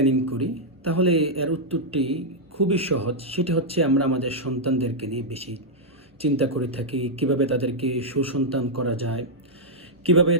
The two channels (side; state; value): both; normal; correlation -0.05